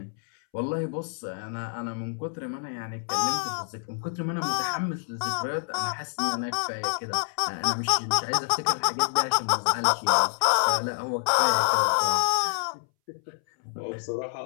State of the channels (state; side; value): silent; right; 60 dB below the other